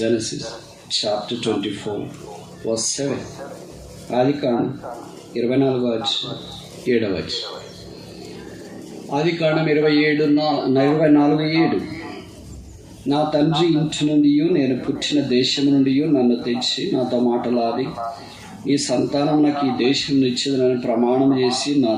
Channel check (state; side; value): identical; both; correlation 1.00